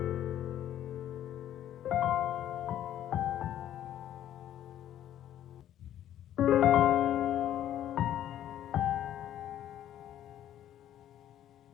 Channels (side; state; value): right; quieter; 11.5 dB